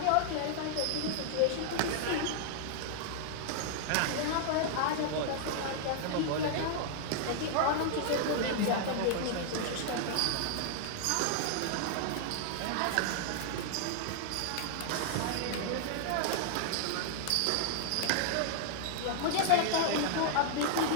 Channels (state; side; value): different; both; correlation -0.01